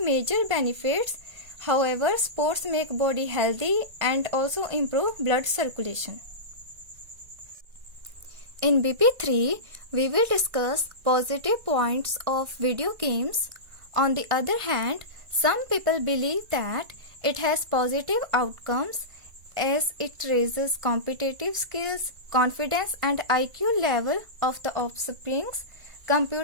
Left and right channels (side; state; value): left; late; 1.9 ms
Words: major benefits. However, sports make body healthy and also improve blood circulation. In BP3, we will discuss positive points of video games. On the other hand, some people believe that it has positive outcomes as it raises competitive skills, confidence, and IQ level of the offsprings.